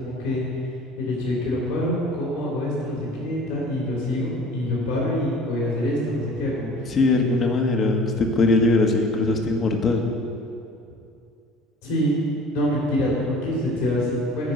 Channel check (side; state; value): both; normal; correlation 0.46